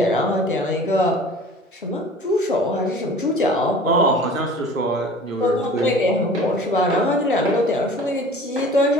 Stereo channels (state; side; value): normal; both; correlation 0.44